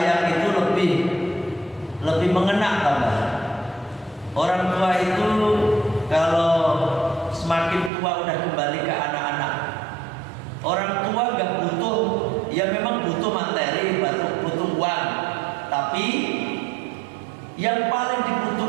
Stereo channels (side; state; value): left; drops out; at 7.9 s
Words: itu lebih mengena tambah. Orang tua itu kalau semakin tua udah kembali ke anak-anak. Orang tua gak butuh, ya memang butuh materi, butuh uang. Tapi yang paling